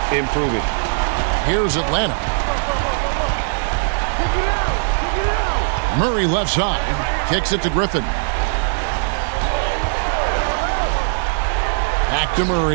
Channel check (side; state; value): left; silent; digital silence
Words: improving. Here's Atlanta. Murray left side. Kicks it to Griffin. Back to